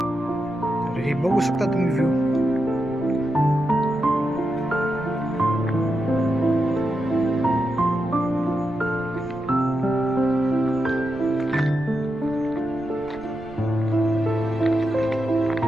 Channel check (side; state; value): right; noise; rumble, 18 dB below the sound